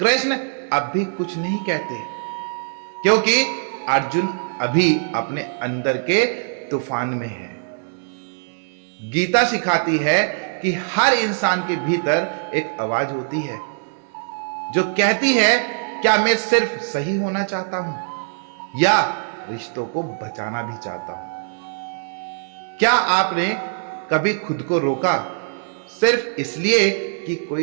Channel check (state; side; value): silent; left; digital silence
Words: अब भी कुछ नहीं कहते, क्योंकि अर्जुन अभी अपने अंदर के तूफान में है। गीता सिखाती है कि हर इंसान के भीतर एक आवाज होती है जो कहती है, क्या मैं सिर्फ सही होना चाहता हूं या रिश्तों को बचाना भी चाहता हूं? क्या आपने कभी खुद को रोका सिर्फ इसलिए कि